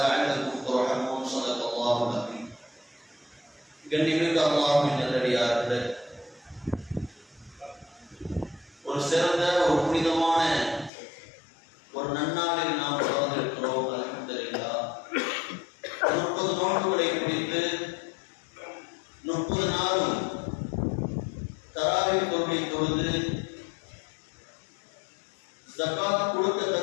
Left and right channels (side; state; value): right; drops out; at 10.9 s